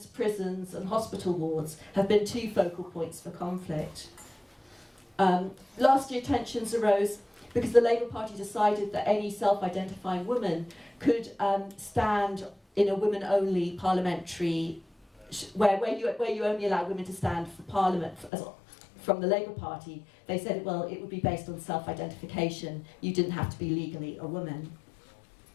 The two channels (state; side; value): drops out; right; at 18.3 s